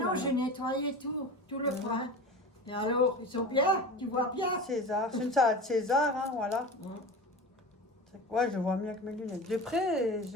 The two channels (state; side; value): normal; both; correlation 0.31